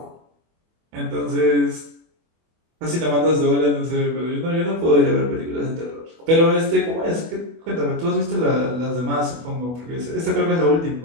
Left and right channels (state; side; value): late; left; 24 ms